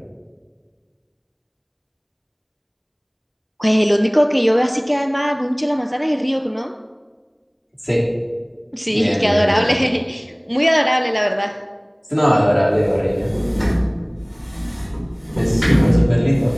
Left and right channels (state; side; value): identical; both; correlation 1.00